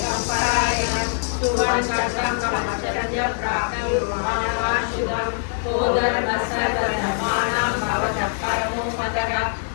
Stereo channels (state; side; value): silent; right; digital silence